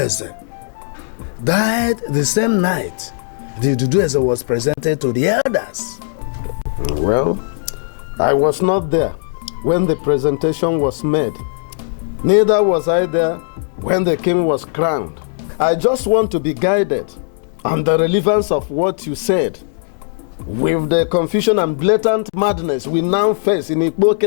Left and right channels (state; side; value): silent; right; digital silence